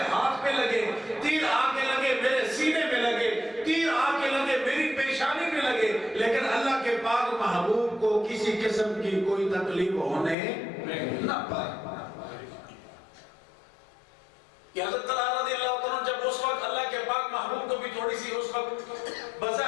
ہاتھ پہ لگے، تیر آ کے لگے میرے سینے میں لگے، تیر آ کے لگے میری پیشانی میں لگے، لیکن اللہ کے پاک محبوب کو کسی قسم کی کوئی تکلیف ہونے نہ پائے. کہ حضرت طلحہ رضی اللہ عنہ جب اس وقت اللہ کے پاک محبوب کو بھی تھوڑی سی اس وقت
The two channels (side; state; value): right; drops out; at 10.4 s